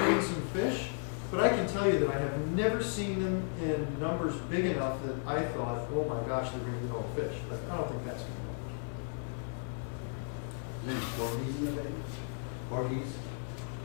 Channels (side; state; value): right; silent; 55 dB below the other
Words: eating some fish, but I can tell you that I have never seen them in numbers big enough that I thought, oh my gosh, they're going to eat all the fish. But I don't think that's going to Is there any porgies in the bay? Porgies?